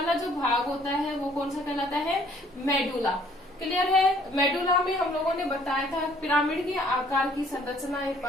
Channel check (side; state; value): both; normal; correlation 0.60